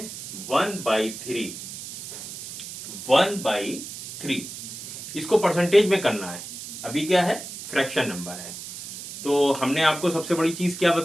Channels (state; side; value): noise; right; hiss, 10 dB below the sound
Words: 1/3। 1/3 इसको परसेंटेज में करना है। अभी क्या है, फ्रैक्शन नंबर है। तो हमने आपको सबसे बड़ी चीज क्या